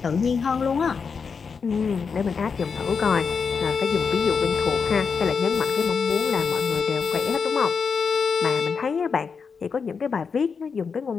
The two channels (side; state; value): right; quieter; 5.7 dB